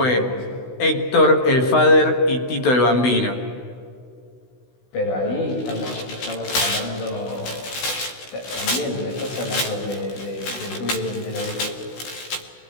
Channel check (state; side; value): late; right; 16 ms